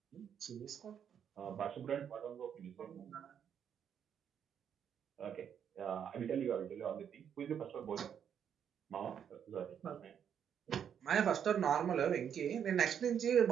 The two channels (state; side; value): quieter; left; 8.4 dB